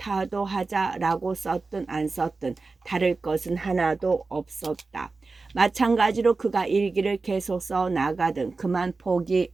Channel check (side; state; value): left; quieter; 3.9 dB